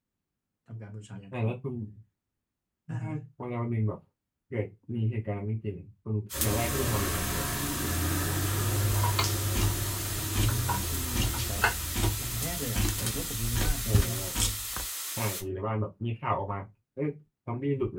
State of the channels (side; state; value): both; identical; correlation 1.00